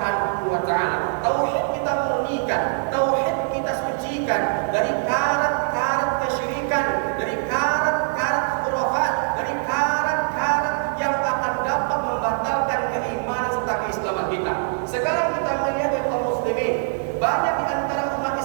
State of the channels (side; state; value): left; silent; 63 dB below the other